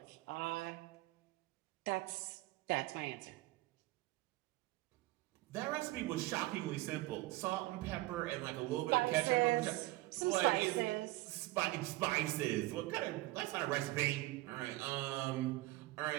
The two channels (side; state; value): left; quieter; 19.4 dB